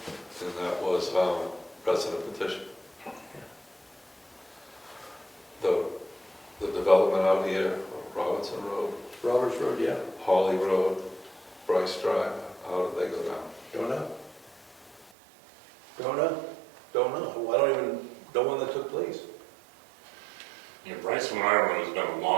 And that was resident petition. The development out here, Robinson Road, Roberts Road, yeah. Hawley Road, Bryce Drive, how did they go down? Don't know. Don't know. Don't know. I don't even know when that took place. Yeah, Bryce, from what I remember, has been a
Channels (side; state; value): left; drops out; at 15.1 s